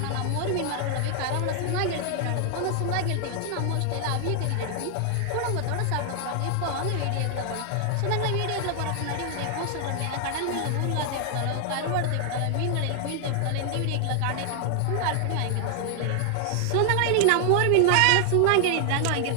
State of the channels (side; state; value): both; different; correlation 0.00